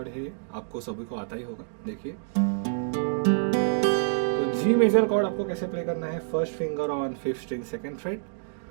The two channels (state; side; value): silent; left; digital silence